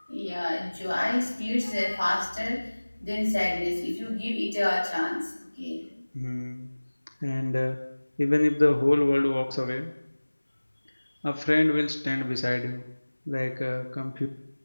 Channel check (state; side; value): inverted; both; correlation -1.00